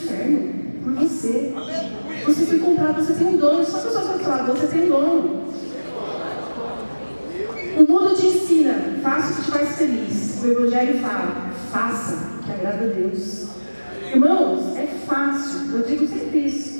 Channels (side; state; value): both; inverted; correlation -1.00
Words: por você. Você foi comprado, você tem um dono. Só a pessoa vai falar, você tem um dono. O mundo te ensina, faça o que te faz feliz. O Evangelho fala, faça o que agrada a Deus. Irmãos, é fácil, eu digo sempre